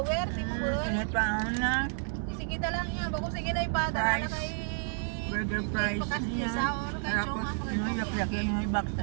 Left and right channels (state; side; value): silent; left; 57 dB below the other